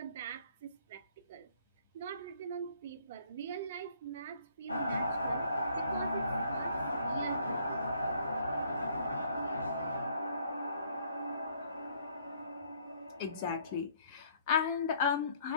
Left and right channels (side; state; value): both; inverted; correlation -0.63